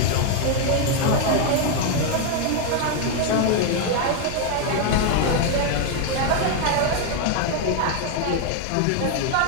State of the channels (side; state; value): both; different; correlation 0.01